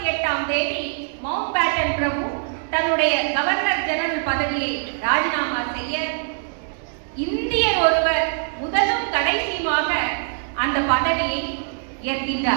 தேதி மவுண்ட் பேட்டன் பிரபு தன்னுடைய கவர்னர் ஜெனரல் பதவியை ராஜினாமா செய்ய இந்தியர் ஒருவர் முதலும் கடைசியுமாக அந்த பதவியை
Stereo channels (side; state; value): left; silent; 64 dB below the other